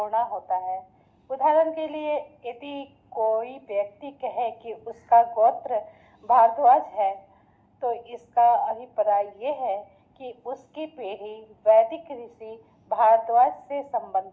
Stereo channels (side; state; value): both; identical; correlation 1.00